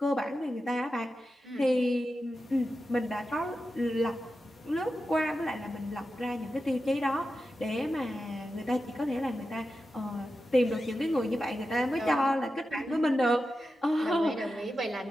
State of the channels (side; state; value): both; normal; correlation 0.91